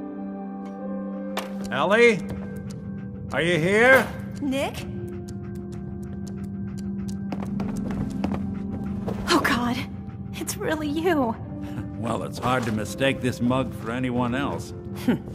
Ellie? Are you here? Nick? Oh God, it's really you. Well, it's hard to mistake this mug for anyone else.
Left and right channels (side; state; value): both; identical; correlation 1.00